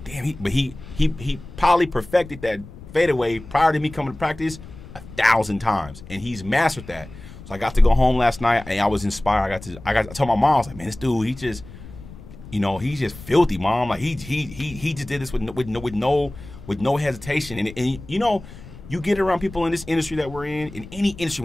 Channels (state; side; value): noise; left; rumble, 16 dB below the sound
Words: damn, he probably perfected that fadeaway prior to me coming to practice 1,000 times, and he's mastered that. So I got to go home last night and I was inspired. I told my mom, I was like, man, this dude, he's just filthy, mom. Like he just did this with no hesitation, and you get around people in this industry that we're in any industry,